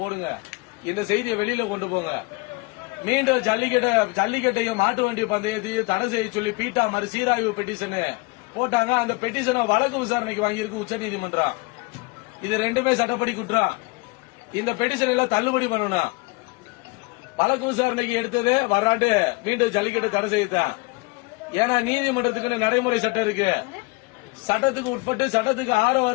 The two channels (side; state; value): right; quieter; 25.5 dB